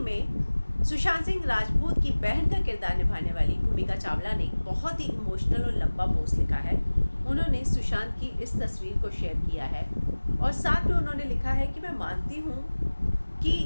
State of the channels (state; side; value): inverted; both; correlation -1.00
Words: सुशांत सिंह राजपूत की बहन का किरदार निभाने वाली भूमिका चावला ने बहुत ही इमोशनल और लंबा पोस्ट लिखा है। उन्होंने सुशांत की इस तस्वीर को शेयर किया है और साथ में उन्होंने लिखा है कि मैं मानती हूँ कि